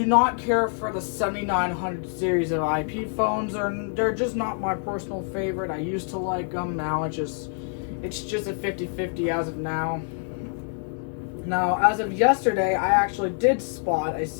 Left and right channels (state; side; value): silent; right; 60 dB below the other